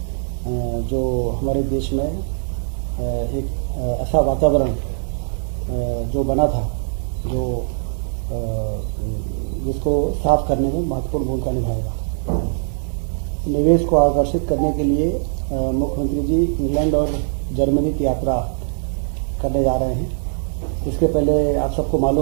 जो हमारे देश में एक ऐसा वातावरण जो बना था जिसको साफ करने में महत्वपूर्ण भूमिका निभाएगा। निवेश को आकर्षित करने के लिए मुख्यमंत्री जी इंग्लैंड और जर्मनी की यात्रा करने जा रहे हैं। इसके पहले आप सबको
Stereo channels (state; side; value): silent; left; digital silence